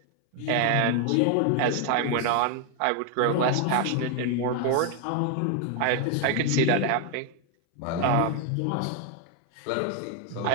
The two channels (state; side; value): different; both; correlation 0.01